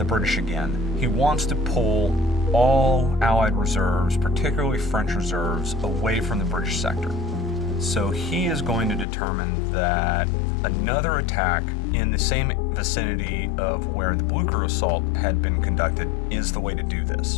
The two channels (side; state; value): right; drops out; at 9.1 s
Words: British again. He wants to pull all Allied reserves, particularly French reserves, away from the British sector. So he is going to determine that another attack in the same vicinity of where the Blucher assault had been conducted is the way to do